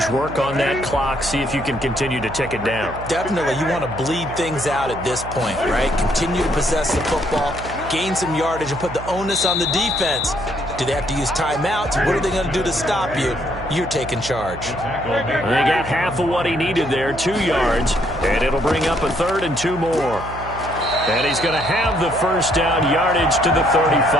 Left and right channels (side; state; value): right; noise; hum, 12 dB below the sound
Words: work on that clock, see if you can continue to tick it down. Definitely. You want to bleed things out at this point, right? Continue to possess the football, gain some yardage, and put the onus on the defense. Do they have to use timeouts? What are they going to do to stop you? You're taking charge. They got half of what he needed there, 2 yards, and it'll bring up a 3rd and 2 more. And he's going to have the 1st down, yardage to the